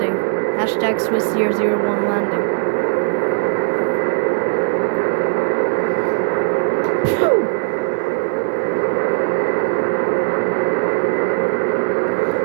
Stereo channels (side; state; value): left; silent; digital silence